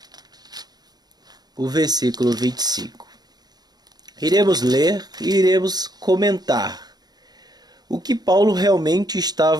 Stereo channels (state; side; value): late; left; 0.19 ms